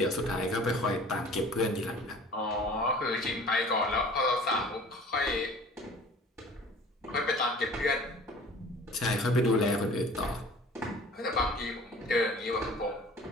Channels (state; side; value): normal; both; correlation 0.46